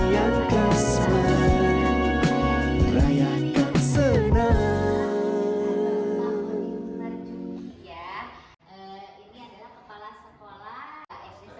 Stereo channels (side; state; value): both; identical; correlation 1.00